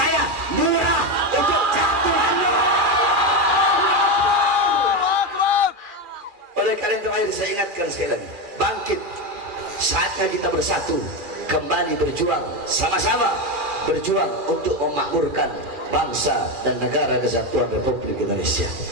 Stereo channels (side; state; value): left; late; 2.4 ms